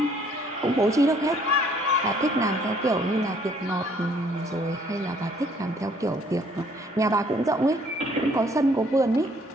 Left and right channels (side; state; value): both; normal; correlation 0.61